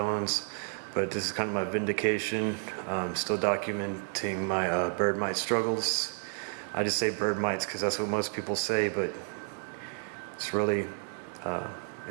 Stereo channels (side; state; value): left; silent; 57 dB below the other